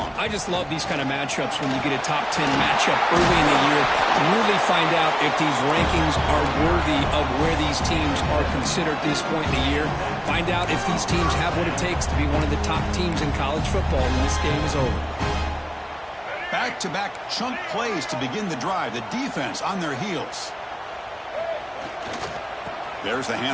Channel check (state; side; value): identical; both; correlation 1.00